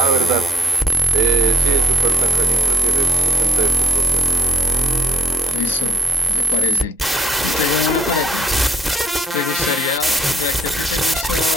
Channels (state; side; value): normal; both; correlation 0.65